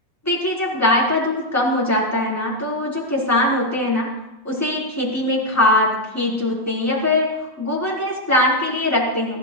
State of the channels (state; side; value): normal; both; correlation 0.02